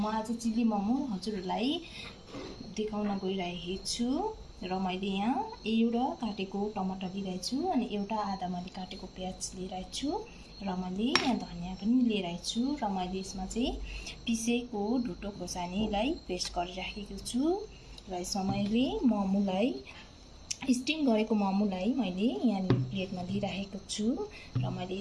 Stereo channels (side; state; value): both; identical; correlation 1.00